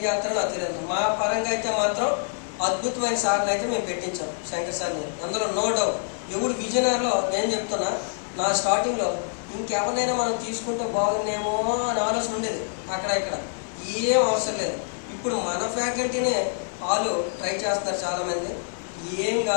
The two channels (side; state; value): right; silent; digital silence